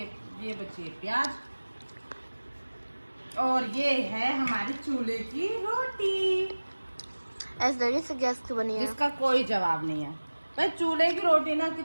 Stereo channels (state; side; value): inverted; both; correlation -1.00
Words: बची है प्याज। और ये है हमारी चूल्हे की रोटी, ऐसे लगे से गैस की बनी है। जिसका कोई जवाब नहीं है भाई। चूल्हे की रोटी ना